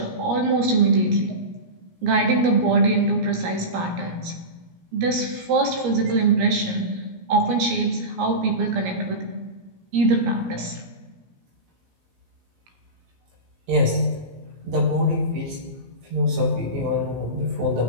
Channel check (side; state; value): left; late; 17 ms